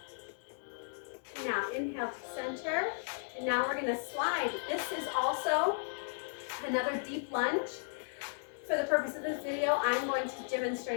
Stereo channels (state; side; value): silent; right; digital silence